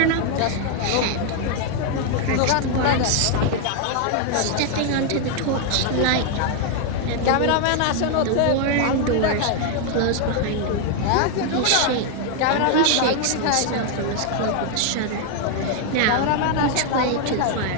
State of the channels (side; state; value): both; different; correlation 0.00